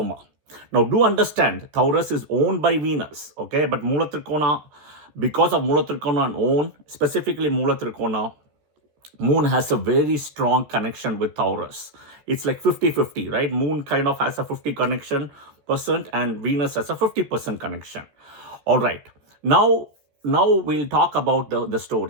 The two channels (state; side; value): late; left; 14 ms